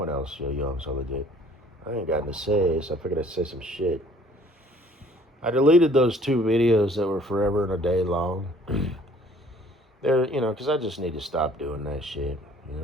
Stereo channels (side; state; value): both; normal; correlation 0.55